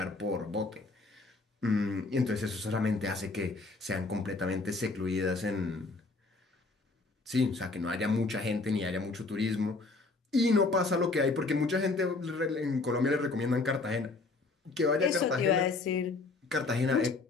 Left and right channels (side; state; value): right; quieter; 3.6 dB